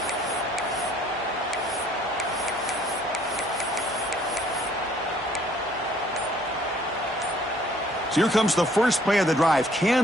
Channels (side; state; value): both; normal; correlation 0.60